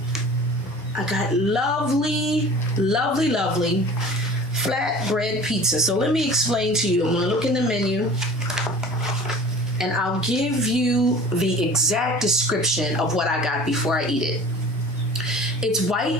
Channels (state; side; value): normal; both; correlation 0.42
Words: I got lovely flatbread pizza. So let me explain to you. I'm gonna look in the menu and I'll give you the exact description of what I got before I eat it. It's